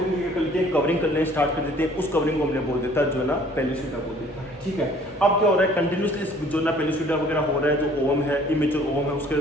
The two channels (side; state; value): both; normal; correlation 0.55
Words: की क्या करते हैं, कवरिंग करने स्टार्ट कर देते हैं। उस कवरिंग को हमने बोल देता है जोना पेल्यूसिडा बोल देता है। ठीक है, अब क्या हो रहा है, कंटिन्यूसली जोना पेल्यूसिडा वगैरह हो रहा है, जो ओवम है, इमेच्योर ओवम है, उसके